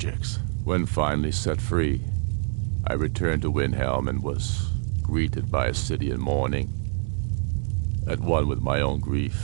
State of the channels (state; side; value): silent; left; 61 dB below the other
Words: When finally set free, I returned to Windhelm and was greeted by a city in mourning, at one with my own